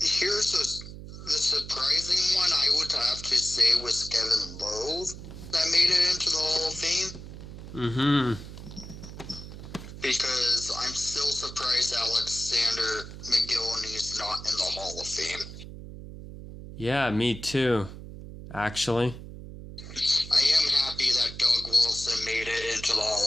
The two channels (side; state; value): right; noise; hum, 12 dB below the sound